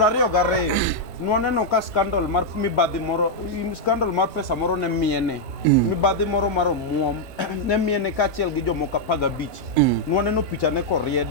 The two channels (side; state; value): both; normal; correlation -0.03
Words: nwaneno ka scandal mar mibadhi moro scandal mar pesa moro ne miene mibadhi moro mar omuom ne miene kachiel gi jomoko 15 nwaneno picha ne